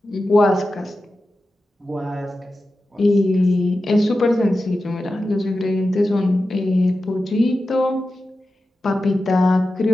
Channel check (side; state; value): both; normal; correlation 0.92